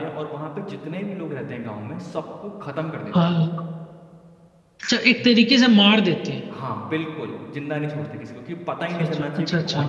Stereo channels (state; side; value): identical; both; correlation 1.00